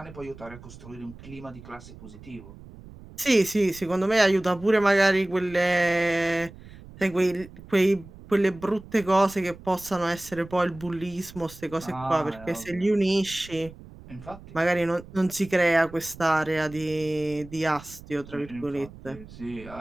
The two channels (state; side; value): noise; right; rumble, 18 dB below the sound